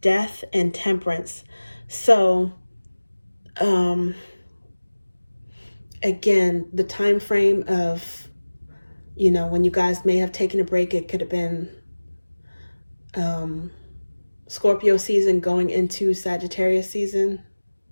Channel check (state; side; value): inverted; both; correlation -1.00